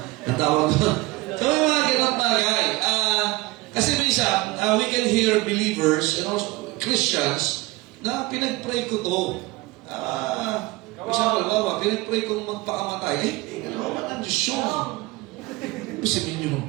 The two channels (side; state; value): left; quieter; 21.6 dB